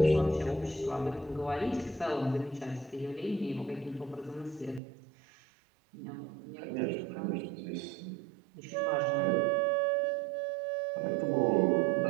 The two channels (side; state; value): left; drops out; at 4.8 s